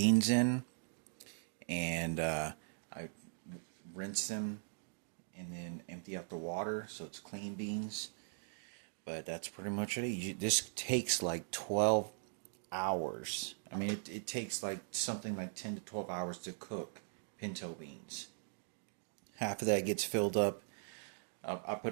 in, and I rinse them and then empty out the water so it's clean beans. But that's pretty much it. This takes like 12 hours. I mean, it takes like something like 10 to 12 hours to cook pinto beans. Half of that gets filled up. I put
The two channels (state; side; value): silent; left; digital silence